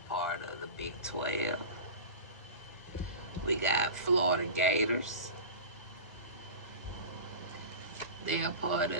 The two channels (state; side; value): late; right; 1.9 ms